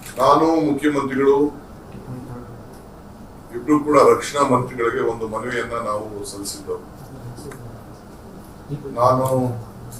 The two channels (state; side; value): identical; both; correlation 1.00